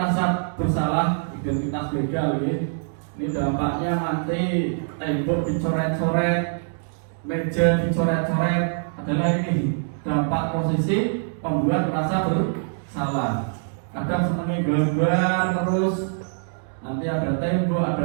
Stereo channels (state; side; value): silent; left; digital silence